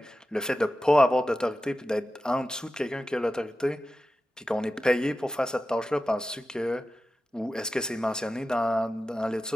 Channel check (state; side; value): normal; both; correlation 0.93